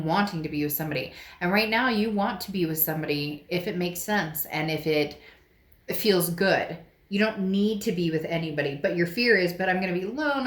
wanting to be with somebody. And right now you want to be with somebody if it makes sense and if it feels good. You don't need to be with anybody, but your fear is, but I'm going to be alone,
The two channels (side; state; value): both; identical; correlation 1.00